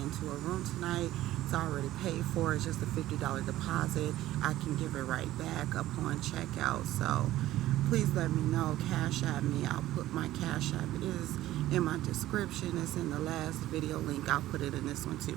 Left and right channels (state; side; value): quieter; left; 14.9 dB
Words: a room tonight. It's already paid for. It's just a $50 deposit. I can give it right back upon checkout. So please let me know. Cash at me. I'll put my cash app. It is in my description. It's in the last video link. I'll put it in this one